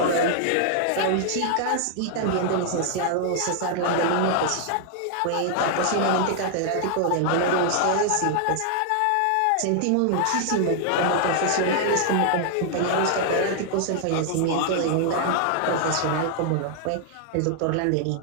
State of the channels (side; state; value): both; different; correlation 0.00